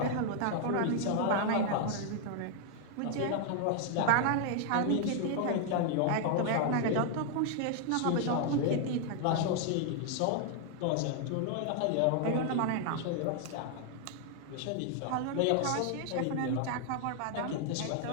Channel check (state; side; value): different; both; correlation 0.00